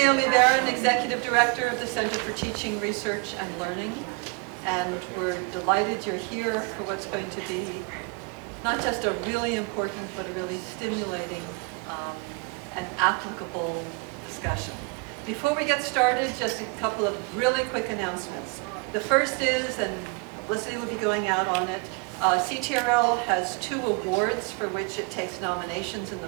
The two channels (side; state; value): left; quieter; 30.7 dB